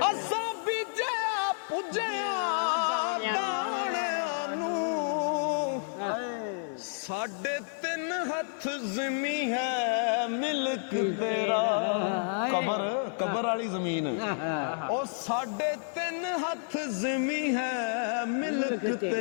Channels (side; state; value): right; silent; digital silence